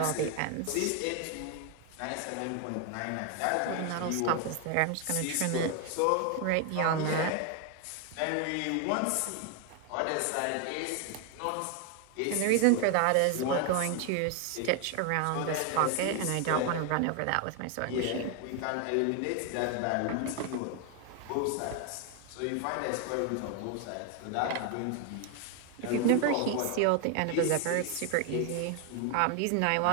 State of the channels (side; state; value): both; different; correlation 0.01